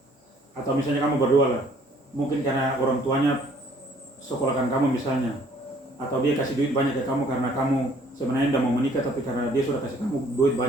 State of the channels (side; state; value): both; normal; correlation 0.60